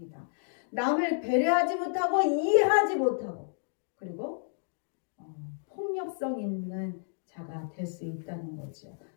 남을 배려하지 못하고 이해하지 못하고 그리고 폭력성 있는 자가 될 수 있다는 거죠.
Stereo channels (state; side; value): silent; right; digital silence